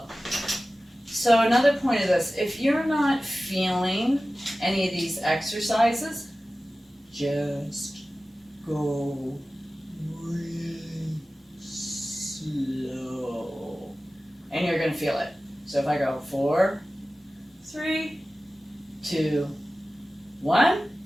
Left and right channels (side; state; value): both; normal; correlation 0.96